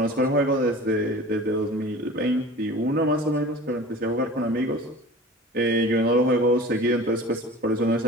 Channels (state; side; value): normal; both; correlation 0.39